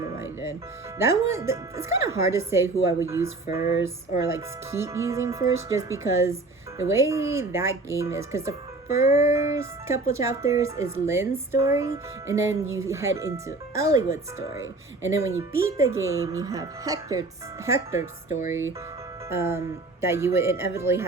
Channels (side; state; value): left; quieter; 3.2 dB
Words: what I did. That one, it's kind of hard to say who I would use first, or like keep using first, just because the way that game is, because the first couple chapters is Lynn's story, and then you head into Eliwood's story, and then when you beat the game, you have Hector's story, that you would inevitably